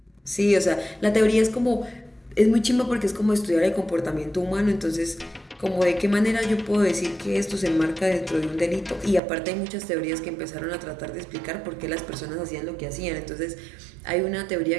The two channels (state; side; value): drops out; left; at 9.2 s